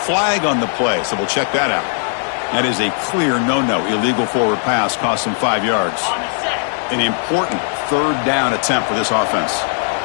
on the play, so we'll check that out. That is a clear no-no. Illegal forward pass cost him 5 yards. An important third down attempt for this offense.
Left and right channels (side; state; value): right; silent; 60 dB below the other